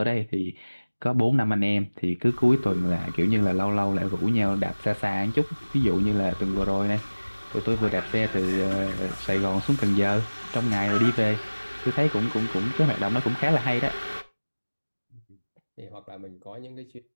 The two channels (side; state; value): both; inverted; correlation -1.00